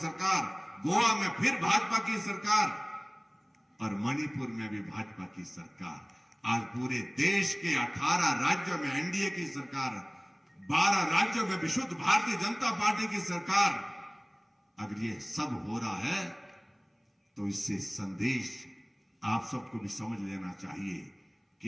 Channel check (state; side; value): identical; both; correlation 1.00